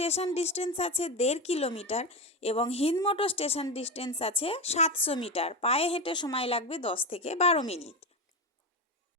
ডিস্টেন্স আছে 1.5 কিলোমিটার এবং হিন্দমোটর স্টেশন ডিস্টেন্স আছে 700 মিটার। পায়ে হেঁটে সময় লাগবে 10 থেকে 12 মিনিট।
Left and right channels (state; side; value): normal; both; correlation 0.17